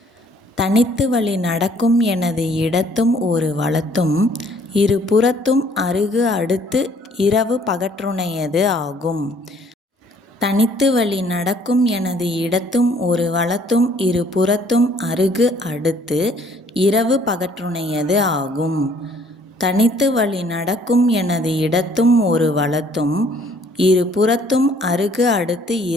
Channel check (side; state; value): both; normal; correlation 0.60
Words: தனித்து வழி நடக்கும் எனது இடத்தும் ஒரு வலத்தும் இரு புறத்தும் அருகு அடுத்து இரவு பகற்றுணையது ஆகும். தனித்து வழி நடக்கும் எனது இடத்தும் ஒரு வலத்தும் இரு புறத்தும் அருகு அடுத்து இரவு பகற்றுணையது ஆகும். தனித்து வழி நடக்கும் எனது இடத்தும் ஒரு வலத்தும் இரு புறத்தும் அருகு அடுத்து